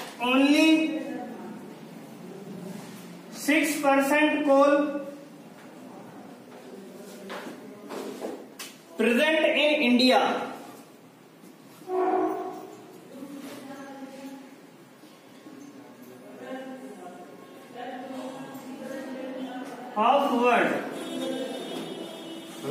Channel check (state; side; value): identical; both; correlation 1.00